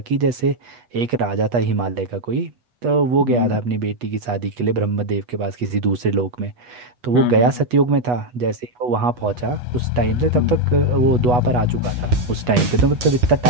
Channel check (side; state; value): left; late; 8.3 ms